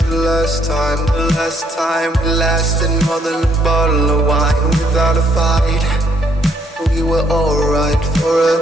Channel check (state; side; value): normal; both; correlation 0.69